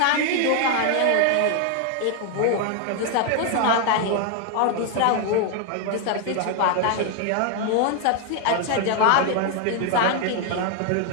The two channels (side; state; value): both; different; correlation 0.00